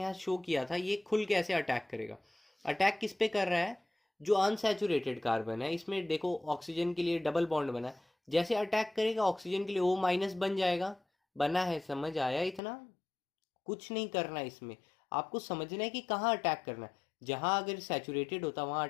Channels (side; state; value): right; drops out; at 12.6 s